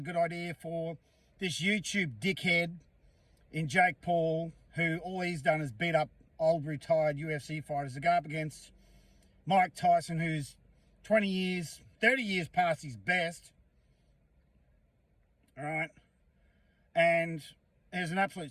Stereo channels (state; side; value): identical; both; correlation 1.00